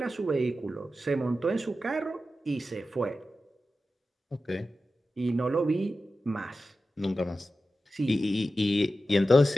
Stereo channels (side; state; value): both; normal; correlation 0.93